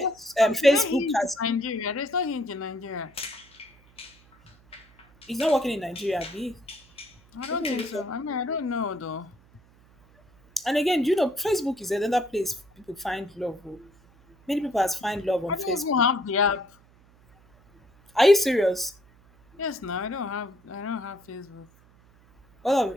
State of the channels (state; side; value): noise; right; hum, 29 dB below the sound